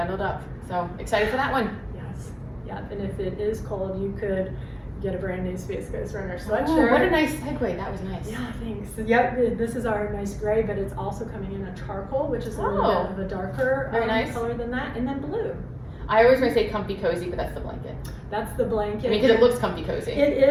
up. So excited for that one. Yes. Yeah, and if it is cold, you could get a brand new Space Coast Runner Oh, sweatshirt. what a nice segue. That was nice. Yeah, thanks. Yep, this is our nice gray, but it's also coming in a charcoal, which is a little bit of a darker Very nice. color than that, and then blue. I always want to say comfy cozy, but that's the blanket. That's the blanket. I mean, because it looks comfy cozy. It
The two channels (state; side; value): identical; both; correlation 1.00